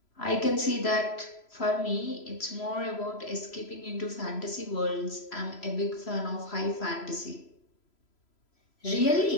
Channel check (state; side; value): late; right; 3.0 ms